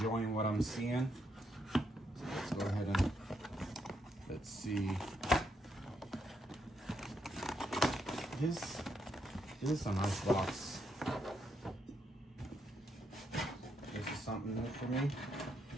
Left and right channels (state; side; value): normal; both; correlation 0.77